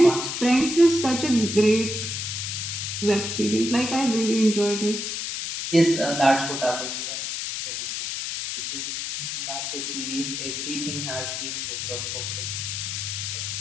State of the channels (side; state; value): left; noise; hiss, 4 dB below the sound